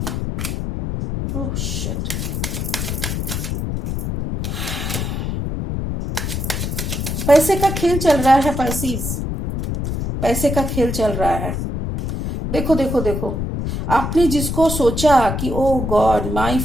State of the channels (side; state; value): left; noise; rumble, 3 dB below the sound